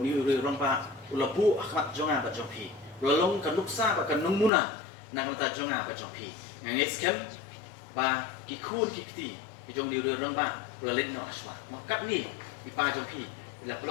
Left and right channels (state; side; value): drops out; right; at 4.5 s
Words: ni rang ba ulapu akhmat jonga ba jongpi ulalong kanuksa ba kanung muna na kanata jonga ba jongpi ngit skem ba ki khun ki kti ki jong ni rang ba rolet no aswa no kat ni ki pa jongpi ila